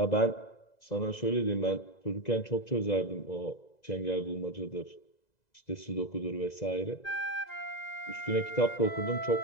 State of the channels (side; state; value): right; late; 2.0 ms